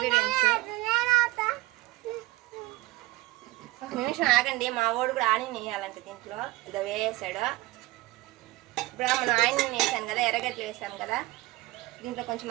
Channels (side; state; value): left; quieter; 19.7 dB